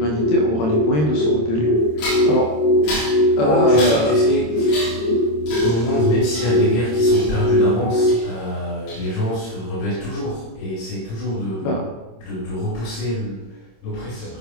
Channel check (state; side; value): late; right; 26 ms